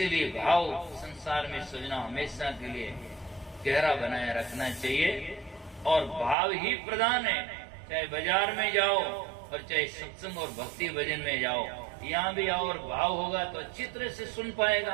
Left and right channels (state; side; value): drops out; left; at 6.4 s